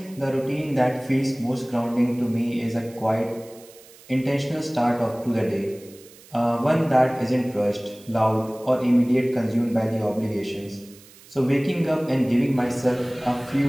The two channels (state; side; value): noise; right; hiss, 23 dB below the sound